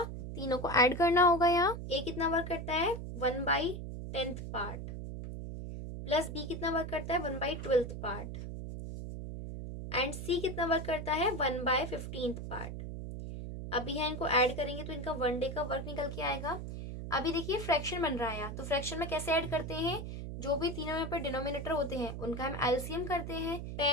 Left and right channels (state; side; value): noise; right; hum, 7 dB below the sound